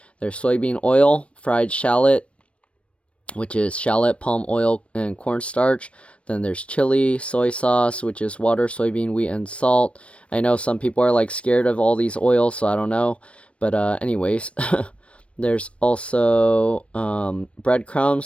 There's soybean oil, fried shallot, which is shallot, palm oil, and cornstarch. Then there's chili, soy sauce, which is water, soybean, wheat, and salt. I know some people are like scared of all these oils, so I don't know. But anyways, there's also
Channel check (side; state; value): right; late; 0.061 ms